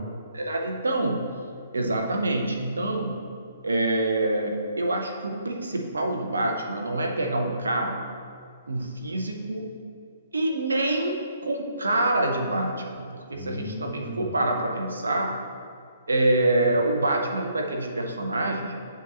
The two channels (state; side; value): inverted; both; correlation -0.72